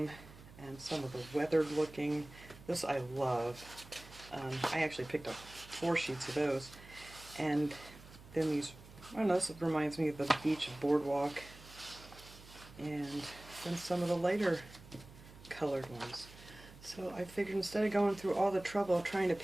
and some of the weathered looking. This I love. I actually picked up 4 sheets of those. And then these, I don't know, this reminds me of the beach boardwalk. And then some of the lighter colored ones. So I figured instead of going through all the trouble of trying to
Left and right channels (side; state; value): right; noise; hum, 19 dB below the sound